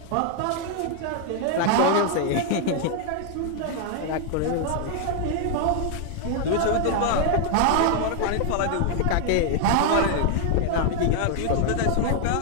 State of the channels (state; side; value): different; both; correlation 0.00